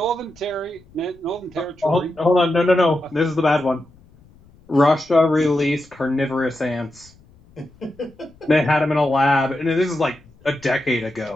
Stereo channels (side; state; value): left; noise; rumble, 27 dB below the sound